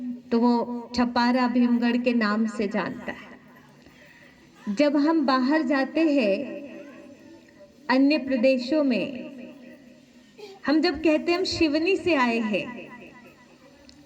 तो वो छपारा भीमगढ़ के नाम से जानता है। जब हम बाहर जाते हैं अन्य प्रदेशों में, हम जब कहते हैं हम शिवनी से आए हैं,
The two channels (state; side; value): identical; both; correlation 1.00